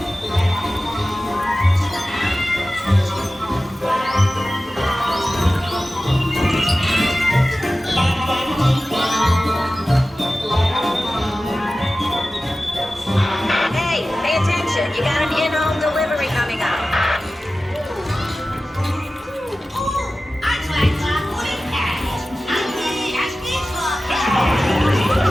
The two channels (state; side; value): normal; both; correlation 0.95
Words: Hey, pay attention. You got an in-home delivery coming up.